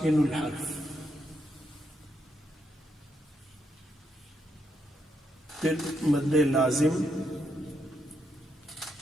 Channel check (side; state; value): both; normal; correlation 0.80